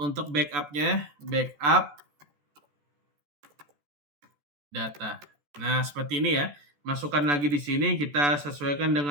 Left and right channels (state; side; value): late; left; 14 ms